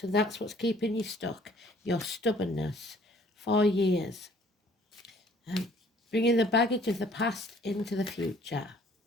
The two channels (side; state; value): both; normal; correlation 0.57